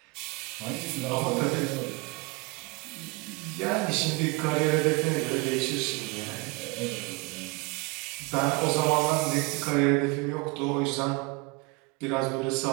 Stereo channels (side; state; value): left; quieter; 26.2 dB